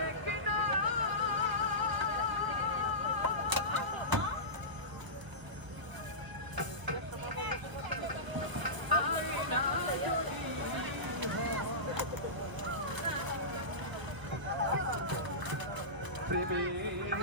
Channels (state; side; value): late; left; 1.0 ms